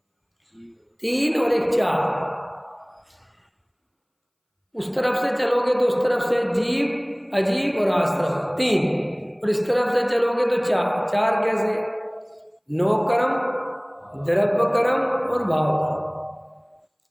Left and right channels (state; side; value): identical; both; correlation 1.00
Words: 3 और 1 4। उस तरफ से चलोगे तो उस तरफ से जीव अजीब और आश्रम 3, और इस तरफ से चलोगे तो 4। 4 कैसे? 9 कर्म, द्रव्य कर्म और भाव कर्म।